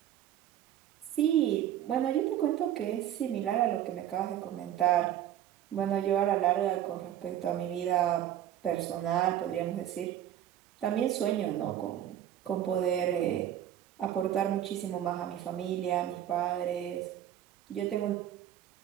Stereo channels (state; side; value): quieter; left; 11.4 dB